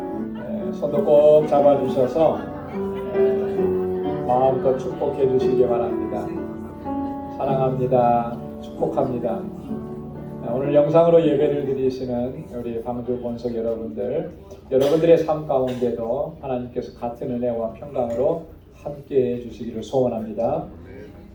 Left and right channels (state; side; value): identical; both; correlation 1.00